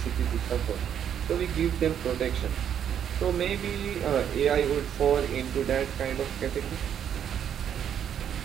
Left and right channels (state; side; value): quieter; left; 9.1 dB